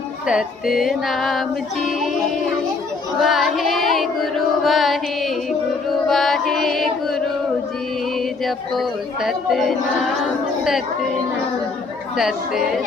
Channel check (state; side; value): quieter; right; 4.0 dB